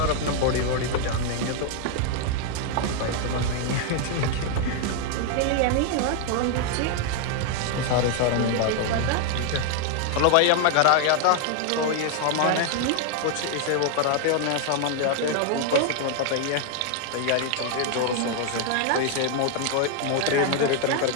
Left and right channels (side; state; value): both; different; correlation 0.00